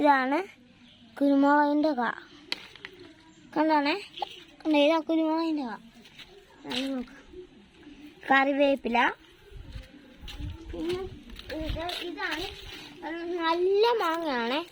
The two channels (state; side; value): identical; both; correlation 1.00